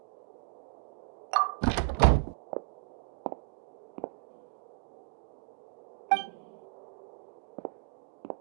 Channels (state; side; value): silent; left; digital silence